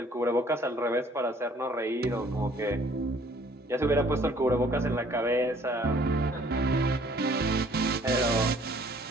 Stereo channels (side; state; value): both; normal; correlation 0.58